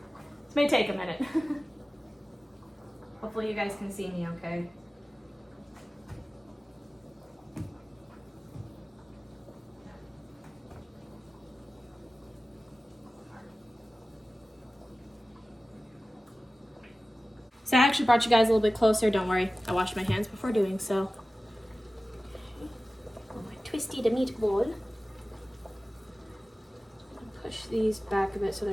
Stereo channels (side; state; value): both; normal; correlation 0.96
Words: This may take a minute. Hopefully you guys can see me okay. So I actually brought you guys a little bit closer. Don't worry, I washed my hands before doing so. My twisty the meatball. Push these back a bit so